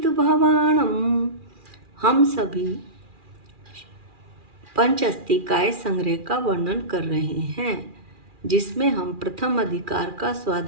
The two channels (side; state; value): left; late; 2.4 ms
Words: हम सभी पंचअस्तिकाय संग्रह का वर्णन कर रहे हैं, जिसमें हम प्रथम अधिकार का